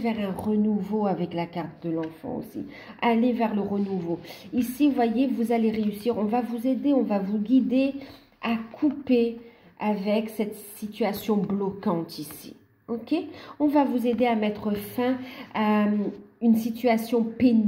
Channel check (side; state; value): both; identical; correlation 1.00